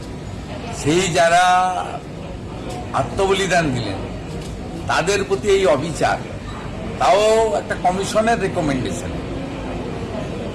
সেই যারা আত্মবলিদান দিলেন তাদের প্রতি এই অবিচার, তাও একটা কমিশনের রেকমেন্ডেশন,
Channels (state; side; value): identical; both; correlation 1.00